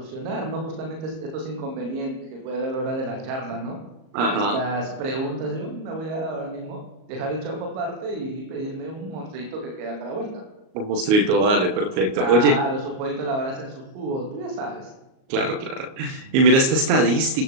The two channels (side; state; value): left; late; 38 ms